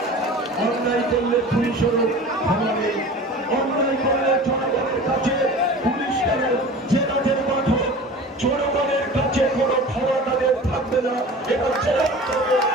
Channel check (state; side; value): normal; both; correlation 0.38